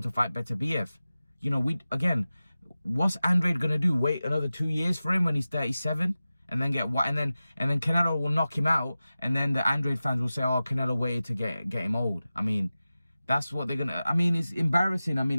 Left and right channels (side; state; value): both; inverted; correlation -0.95